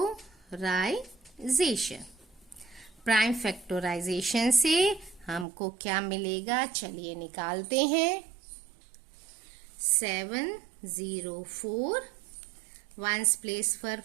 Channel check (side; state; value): left; drops out; at 5.5 s